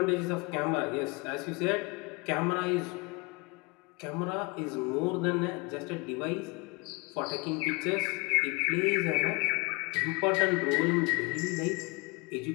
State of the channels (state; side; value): quieter; right; 26.8 dB